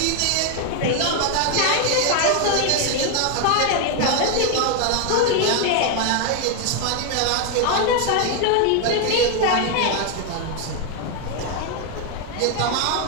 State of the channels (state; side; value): different; both; correlation 0.01